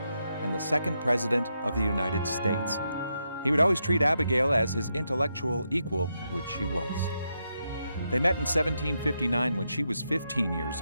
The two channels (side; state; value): both; inverted; correlation -0.83